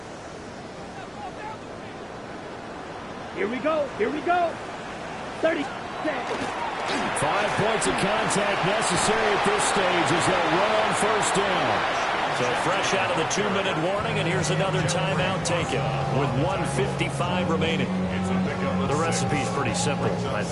Here we go. Here we go. 30 seconds. 5 points of contact necessary at this stage as they'll run on first down. So fresh out of the 2-minute warning, and here's another timeout taken with 1:55 remaining. The recipe's pretty simple, I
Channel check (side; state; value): both; identical; correlation 1.00